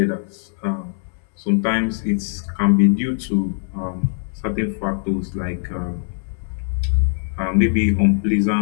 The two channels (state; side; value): silent; right; digital silence